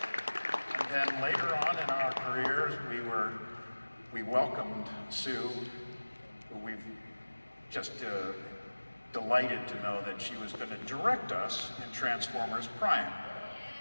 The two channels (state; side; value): inverted; both; correlation -1.00